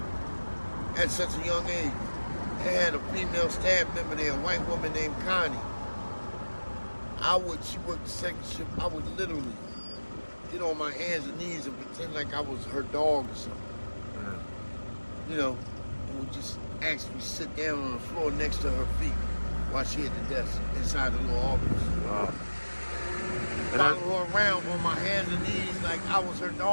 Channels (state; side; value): inverted; both; correlation -1.00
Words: at such a young age. I had a female staff member there, a white woman named Connie. She worked the second shift. I would literally get on my hands and knees and pretend like I was her dog or something. Mm-hmm. You know, and would just actually sit down on the floor next to her feet while she at the desk inside the little office. Wow. Follow her around on my hands and knees like I was her